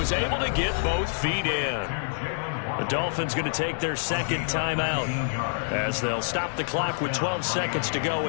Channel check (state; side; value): silent; right; 60 dB below the other